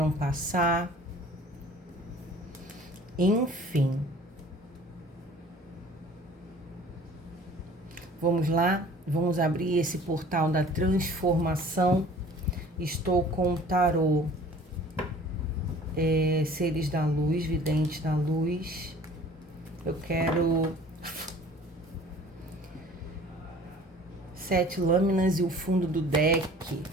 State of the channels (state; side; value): normal; both; correlation 0.48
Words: passar. Enfim. Vamos lá? Vamos abrir esse portal da transformação. Estou com o tarô Seres da Luz, Videntes da Luz. Eu quero 7 lâminas e o fundo do deck.